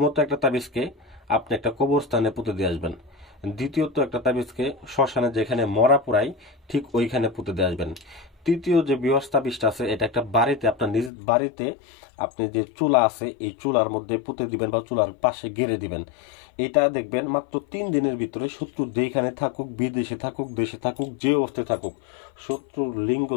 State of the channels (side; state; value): right; drops out; at 11.1 s